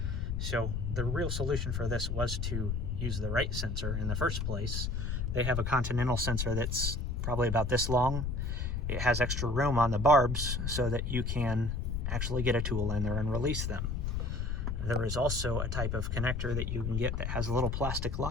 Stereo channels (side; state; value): left; noise; rumble, 1 dB below the sound